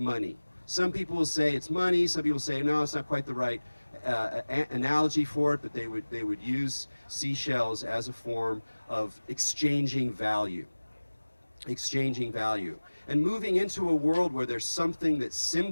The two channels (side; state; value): both; inverted; correlation -1.00